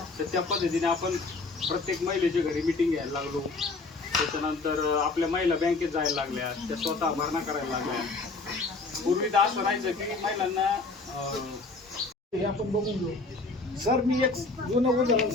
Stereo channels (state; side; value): quieter; right; 3.7 dB